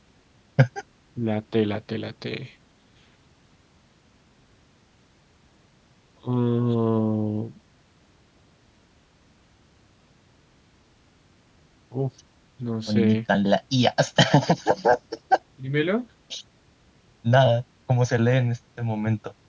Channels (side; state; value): both; identical; correlation 1.00